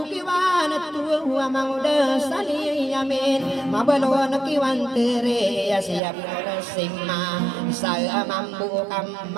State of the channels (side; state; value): left; drops out; at 6.0 s